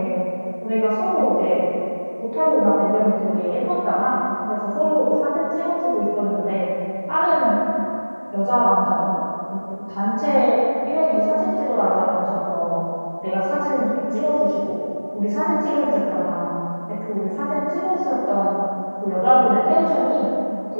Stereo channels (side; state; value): both; inverted; correlation -1.00